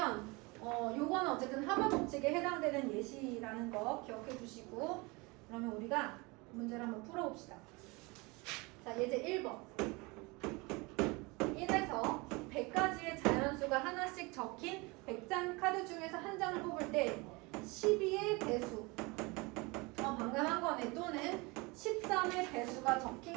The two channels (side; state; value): left; quieter; 26.0 dB